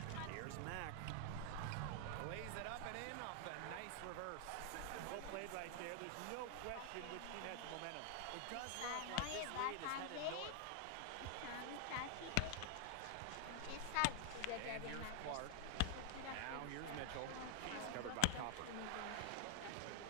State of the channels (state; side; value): different; both; correlation 0.00